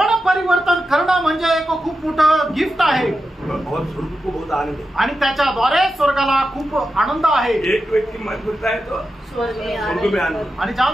परिवर्तन करणं म्हणजे एक खूप मोठं गिफ्ट आहे और स्वर्ग को बहुत आनंद है। आणि त्याच्याद्वारे स्वर्गाला खूप आनंद आहे। एक व्यक्ति मन फिरता है तो स्वर्ग में स्वर्ग में आनंद। आणि ज्या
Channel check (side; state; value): both; normal; correlation 0.90